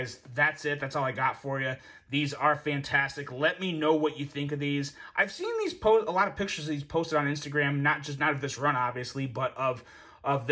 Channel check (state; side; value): identical; both; correlation 1.00